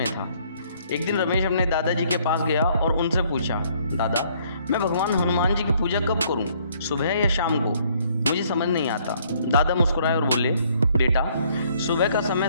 था। एक दिन रमेश अपने दादाजी के पास गया और उनसे पूछा, दादा, मैं भगवान हनुमान जी की पूजा कब करूं, सुबह या शाम को? मुझे समझ नहीं आता। दादा मुस्कुराए और बोले, बेटा, सुबह का समय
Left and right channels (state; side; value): inverted; both; correlation -0.64